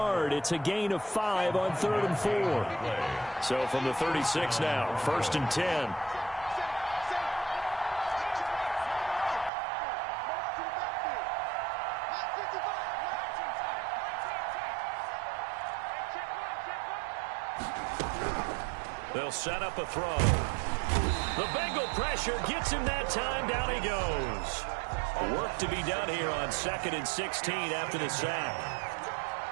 It's a gain of 5 on 3rd and 4. So from the 36 now, 1st and 10. They'll set up a throw. The Bengal pressure gets him that time. Down he goes. Work to be done here on 2nd and 16 after the sack.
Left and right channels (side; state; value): left; drops out; at 9.5 s